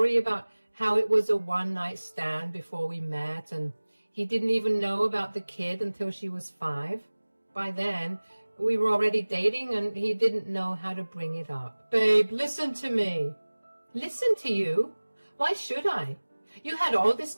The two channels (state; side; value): inverted; both; correlation -1.00